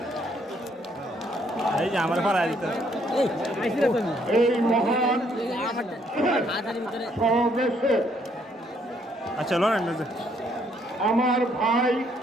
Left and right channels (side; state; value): both; normal; correlation 0.69